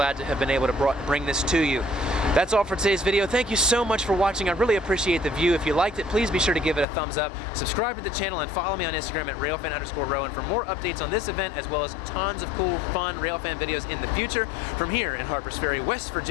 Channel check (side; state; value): right; drops out; at 6.9 s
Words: to have been able to bring this to you. That's all for today's video. Thank you so much for watching. I really appreciate the view. If you liked it, please be sure to give it a thumbs up. Subscribe to the channel and follow me on Instagram at Railfan_Rowan for more updates on this event, as well as tons of cool, fun Railfan videos in the future. From here in Harper's Ferry, West